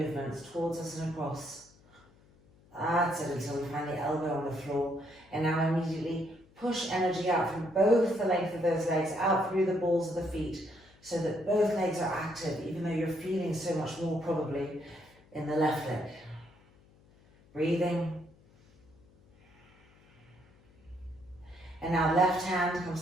towards us and across. That's it, until we find the elbow on the floor. And now immediately push energy out from both the length of those legs, out through the balls of the feet, so that both legs are active, even though you're feeling so much more probably in the left leg. Breathing. And now left hand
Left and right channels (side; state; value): left; noise; hum, 28 dB below the sound